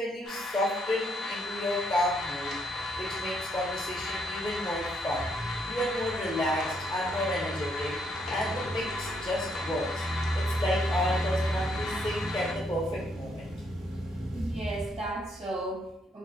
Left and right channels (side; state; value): both; normal; correlation 0.73